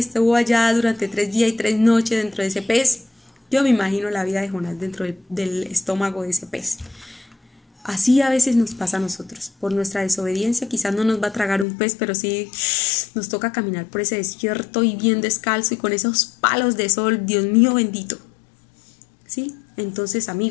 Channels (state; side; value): drops out; right; at 11.7 s